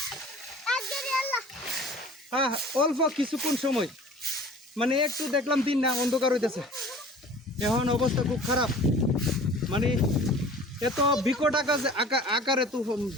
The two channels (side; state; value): both; normal; correlation 0.44